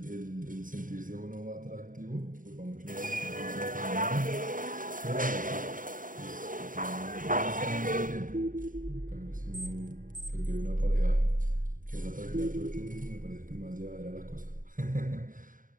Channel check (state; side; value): late; left; 0.39 ms